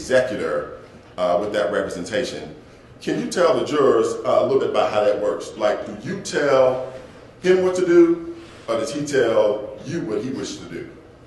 with that representation, can you tell the jurors a little bit about how that works? Like, do you tell him what to do, or does he tell you what he wishes to do?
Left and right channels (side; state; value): both; identical; correlation 1.00